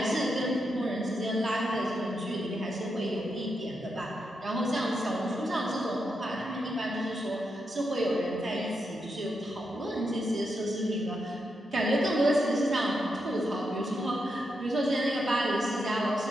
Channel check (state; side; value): normal; both; correlation 0.84